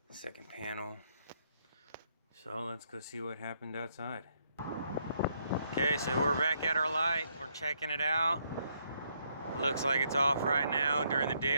Second panel. So let's go see what happened outside. Okay, so we're back at our light. We're checking it out. It looks like it's off right now during the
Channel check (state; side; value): inverted; both; correlation -0.74